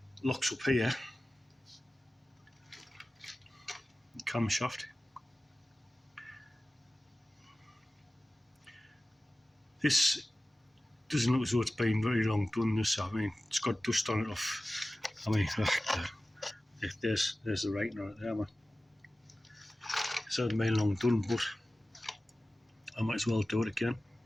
locks up here, camshaft. This doesn't look as though it's been very long done. This, I mean, it's got dust on it off. I mean, there's the writing on it there, man. It's not been long done, but I might as well do it again.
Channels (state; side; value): normal; both; correlation 0.96